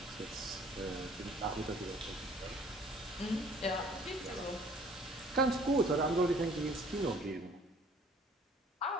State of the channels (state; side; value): normal; both; correlation 0.55